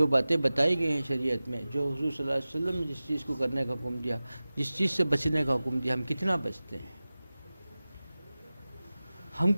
باتیں بتائی گئی ہیں شریعت میں، جو حضور صلی اللہ علیہ وسلم نے جس چیز کو کرنے کا حکم دیا، جس چیز سے بچنے کا حکم دیا، ہم کتنا بچتے ہیں، ہم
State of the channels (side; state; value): both; inverted; correlation -0.97